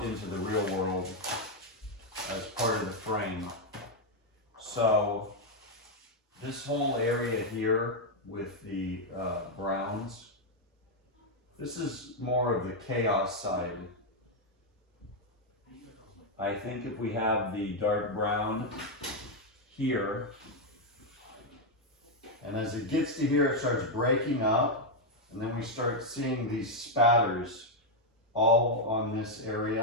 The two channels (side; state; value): both; normal; correlation 0.01